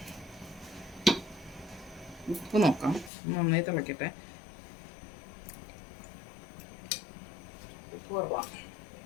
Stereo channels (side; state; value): right; drops out; at 3.1 s